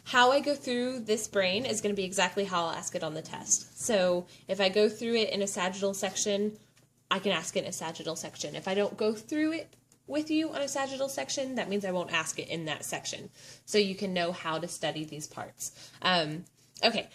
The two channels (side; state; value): both; identical; correlation 1.00